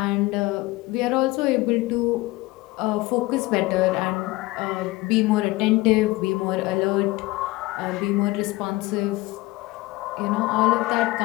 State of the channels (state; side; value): quieter; right; 20.6 dB